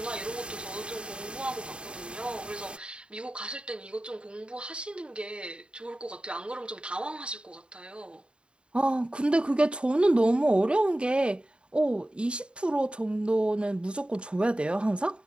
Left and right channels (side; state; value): left; late; 0.053 ms